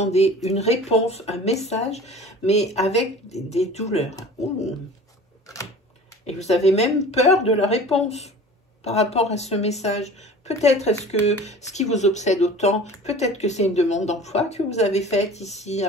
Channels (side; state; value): both; normal; correlation 0.41